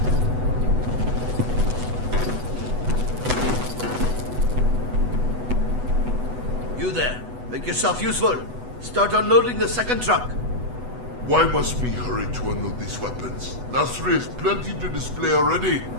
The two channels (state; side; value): late; left; 8.1 ms